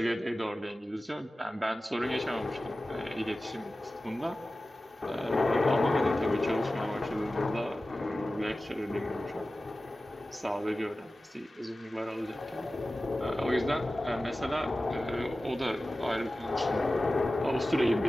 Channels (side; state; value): both; normal; correlation 0.95